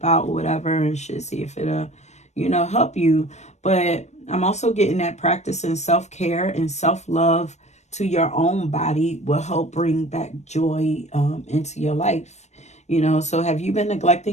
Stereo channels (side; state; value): right; late; 0.33 ms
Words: or whatever, and shit, see if it'll, you know, help you. But I'm also getting that practicing self-care and self-love to your own body will help bring back joy into your life. You know, so have you been